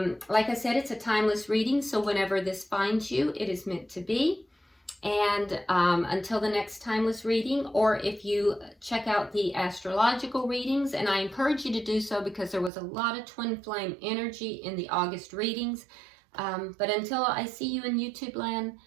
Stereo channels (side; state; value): left; drops out; at 12.7 s